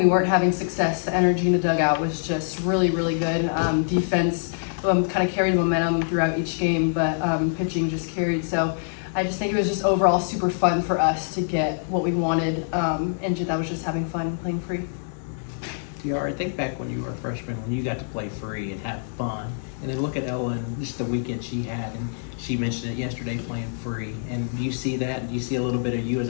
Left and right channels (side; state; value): right; silent; 62 dB below the other